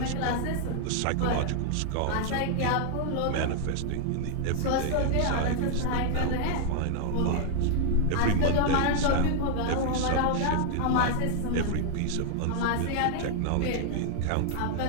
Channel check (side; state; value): both; different; correlation 0.00